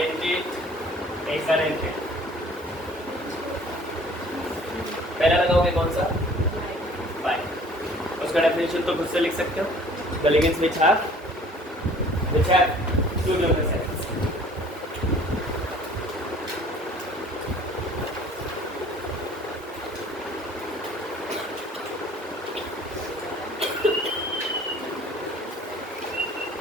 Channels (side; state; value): both; normal; correlation 0.52